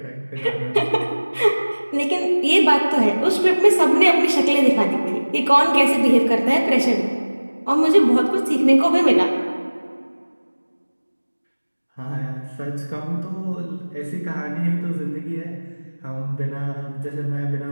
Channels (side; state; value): both; inverted; correlation -1.00